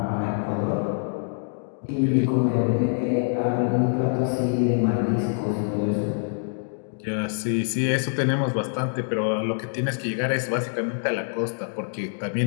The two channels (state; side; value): silent; right; digital silence